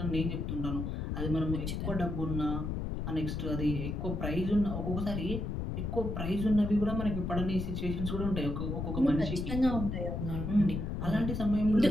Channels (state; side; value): noise; left; rumble, 3 dB below the sound